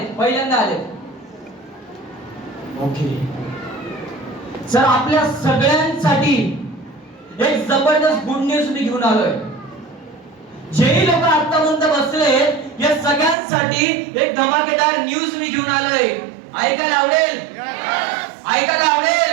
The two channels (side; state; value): left; drops out; at 13.4 s